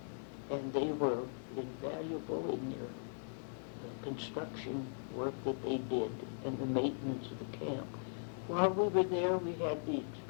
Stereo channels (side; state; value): right; silent; digital silence